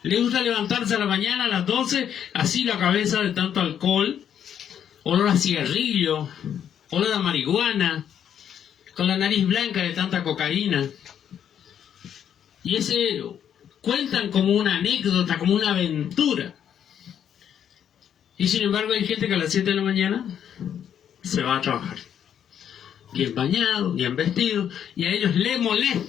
Les gusta levantarse a la mañana a las 12, así la cabeza de tanto alcohol, olor a cigarrillo, olor a marihuana, con la nariz blanca de tanta cocaína. Y ese cuentan como una anécdota, como una aventura. Y sin embargo hay gente que a las 7 de la mañana se va a trabajar. Bien bañado, bien vestido, y a ellos les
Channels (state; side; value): quieter; right; 9.1 dB